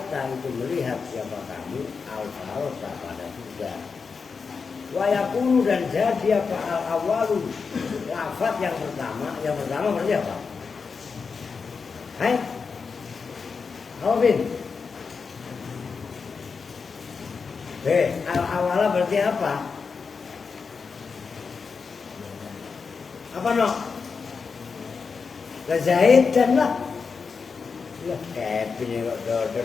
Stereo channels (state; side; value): quieter; right; 5.2 dB